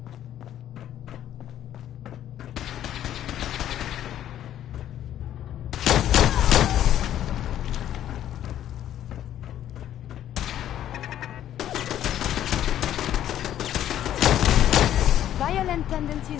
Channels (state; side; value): quieter; right; 11.4 dB